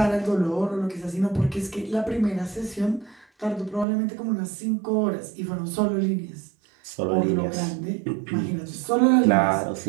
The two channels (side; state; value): left; drops out; at 3.9 s